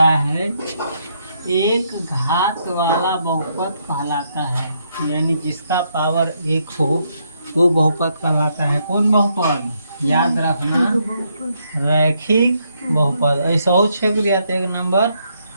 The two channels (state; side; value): inverted; both; correlation -0.76